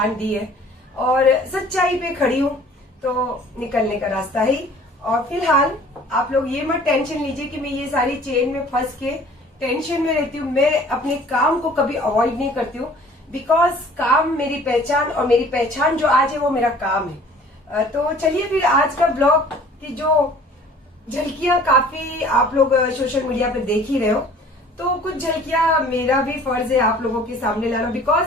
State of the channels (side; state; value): both; normal; correlation 0.50